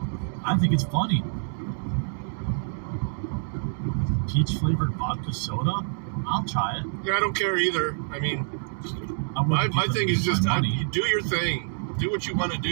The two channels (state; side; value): silent; left; digital silence